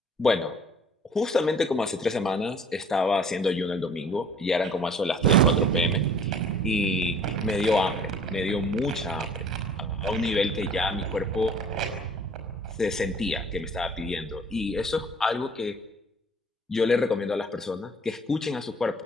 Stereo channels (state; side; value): normal; both; correlation 0.51